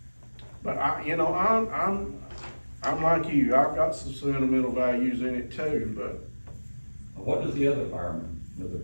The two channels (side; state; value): both; inverted; correlation -1.00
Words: But I'm like you, I've got some sentimental values in it too, but What does the other